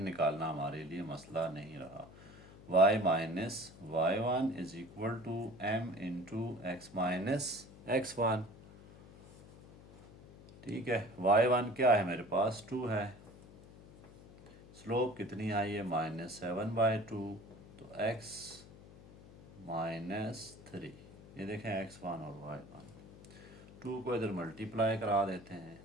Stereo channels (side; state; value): left; noise; hum, 19 dB below the sound